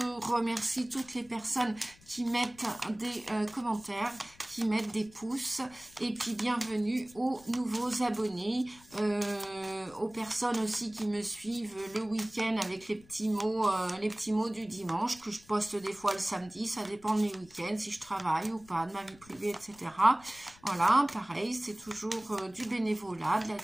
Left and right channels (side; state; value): left; noise; rumble, 25 dB below the sound